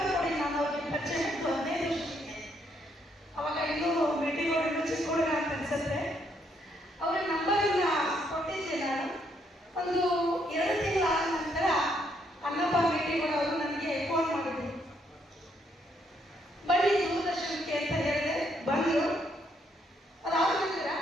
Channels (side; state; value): both; normal; correlation 0.73